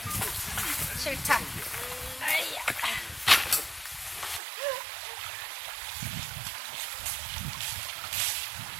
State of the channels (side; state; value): left; drops out; at 4.4 s